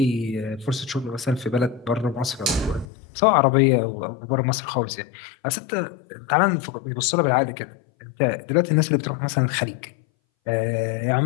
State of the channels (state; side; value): drops out; right; at 2.9 s